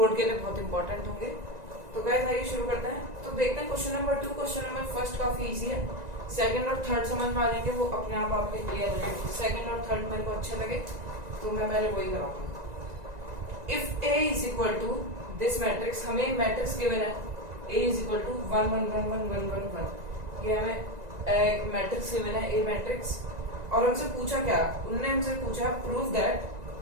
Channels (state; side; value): late; left; 1.9 ms